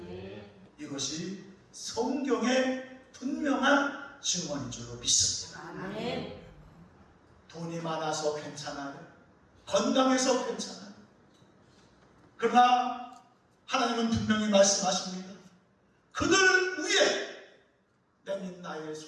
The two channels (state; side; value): identical; both; correlation 1.00